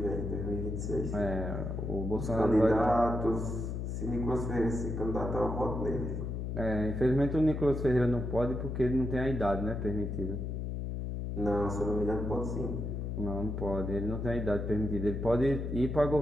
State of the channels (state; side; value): noise; left; hum, 3 dB below the sound